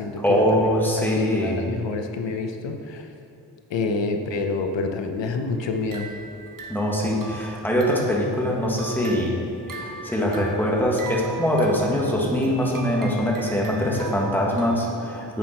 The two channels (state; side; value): normal; both; correlation 0.40